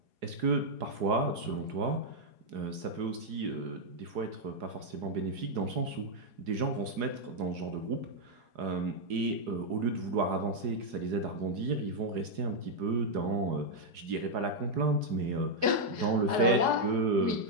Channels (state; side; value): late; left; 4.8 ms